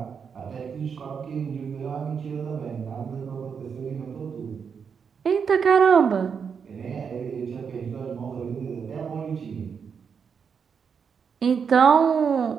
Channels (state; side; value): quieter; left; 6.5 dB